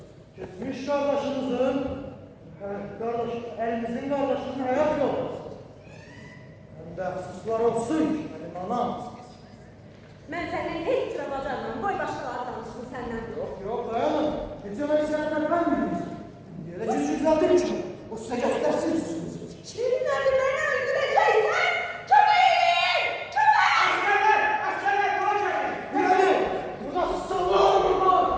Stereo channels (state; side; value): identical; both; correlation 1.00